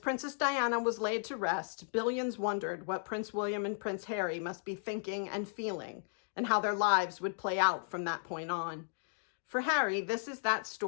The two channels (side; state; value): right; silent; digital silence